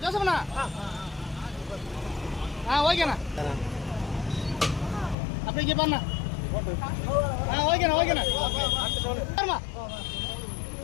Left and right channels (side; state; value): right; drops out; at 5.2 s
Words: ஜோசப்ண்ணா. ஓகேண்ணா அப்படி இங்க பாருண்ணா. ஓகேண்ணா பாருமா